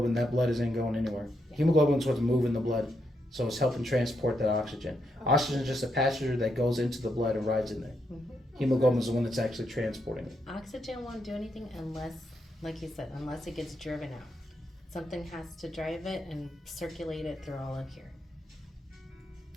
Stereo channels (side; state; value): both; normal; correlation 0.80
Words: that blood isn't going anywhere. Hemoglobin is what's moving the blood, so it's helping transport that oxygen. Oxygen is just a passenger that goes into the blood and rides in there. Hemoglobin is the one that's actually transporting it. Oxygen won't do anything unless, like you said, unless it gets driven out. Something has to drive it and circulate it through all of here.